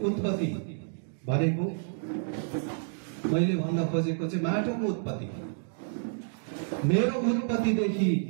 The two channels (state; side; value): silent; left; digital silence